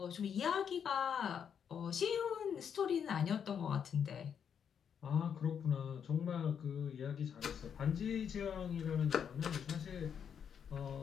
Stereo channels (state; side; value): quieter; right; 7.7 dB